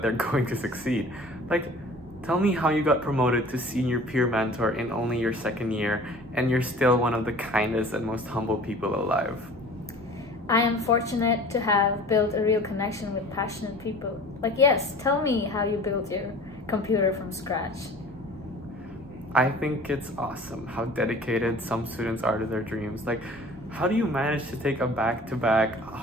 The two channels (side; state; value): both; normal; correlation 0.44